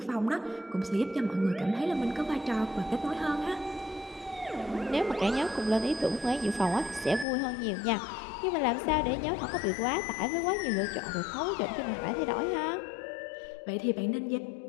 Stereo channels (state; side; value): drops out; right; at 7.2 s